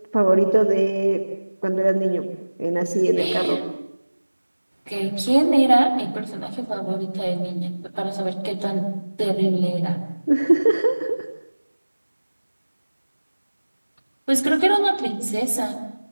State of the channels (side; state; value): both; inverted; correlation -1.00